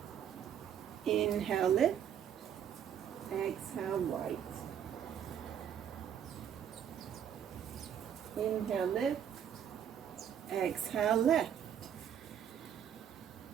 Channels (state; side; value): quieter; left; 9.0 dB